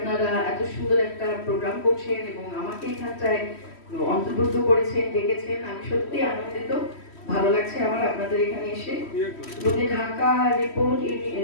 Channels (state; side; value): late; right; 3.1 ms